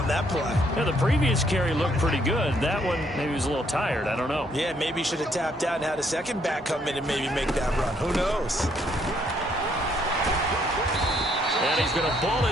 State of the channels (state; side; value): normal; both; correlation 0.69